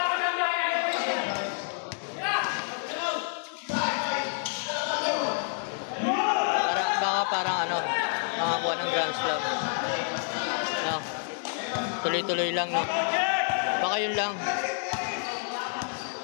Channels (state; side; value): silent; right; 59 dB below the other